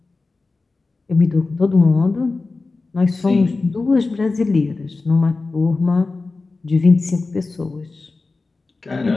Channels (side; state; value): right; quieter; 3.7 dB